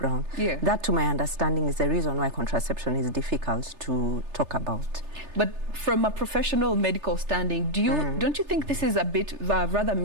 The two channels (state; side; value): late; left; 3.3 ms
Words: Yeah. That, to my understanding, is the reason why contraception is difficult to talk about. But from a professional medical standing, don't you think this is a bit rather